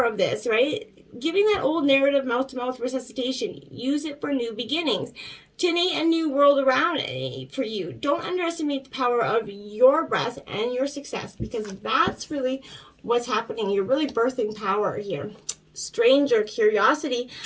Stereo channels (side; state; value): both; identical; correlation 1.00